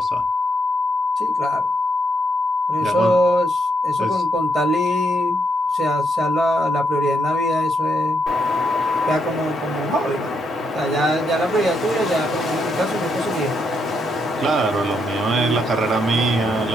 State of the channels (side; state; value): both; normal; correlation 0.78